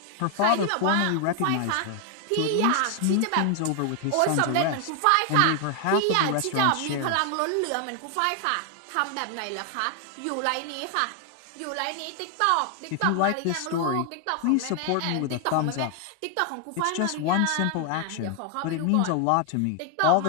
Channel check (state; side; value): different; both; correlation 0.00